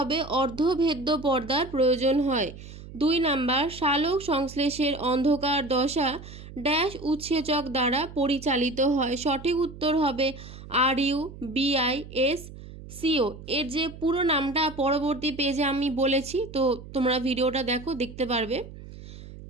অর্ধভেদ্য পর্দার প্রয়োজন হয়। 2 নাম্বার, সালোক সংশ্লেষের অন্ধকার দশা ড্যাশ উৎসেচক দ্বারা পরিচালিত হয়। সঠিক উত্তর হবে RUBISCO। এর যে পুরো নামটা পরবর্তী পেজে আমি বলেছি, তো তোমরা ভিডিওটা দেখো, দেখতে পারবে।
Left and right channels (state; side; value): noise; right; hum, 15 dB below the sound